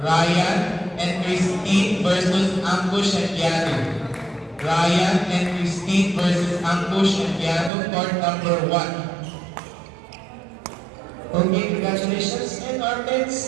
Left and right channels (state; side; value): drops out; left; at 7.7 s